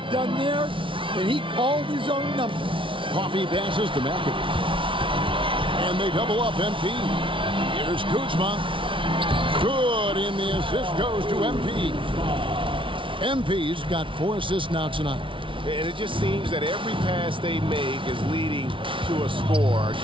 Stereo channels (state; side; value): late; left; 0.25 ms